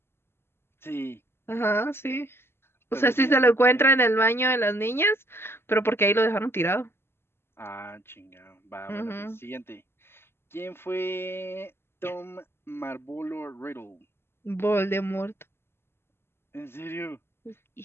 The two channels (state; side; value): late; right; 0.12 ms